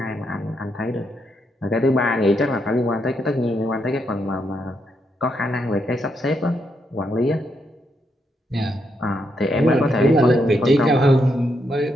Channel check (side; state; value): both; normal; correlation 0.79